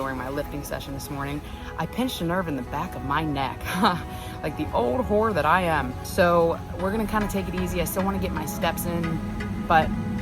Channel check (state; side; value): identical; both; correlation 1.00